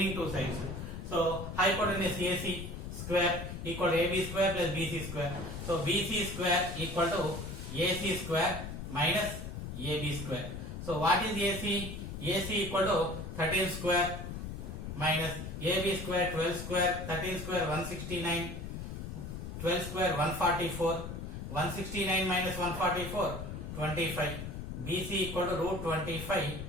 two sides. So hypotenuse AC square equal to AB square plus BC square. So BC square equal to AC square minus AB square. So what is AC? AC equal to 13 square minus AB square 12 square, 13 square 169, 12 square 144, 169 minus 144 25. BC equal to root 25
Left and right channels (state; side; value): noise; left; rumble, 7 dB below the sound